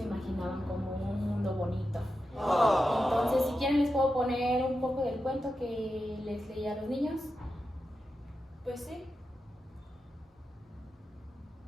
imaginaban como un mundo bonito. Entonces, si quieren les puedo poner un poco del cuento que les leí a los niños. Pues sí.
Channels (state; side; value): normal; both; correlation 0.90